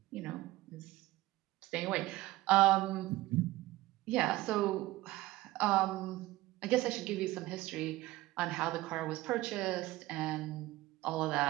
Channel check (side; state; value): left; quieter; 17.7 dB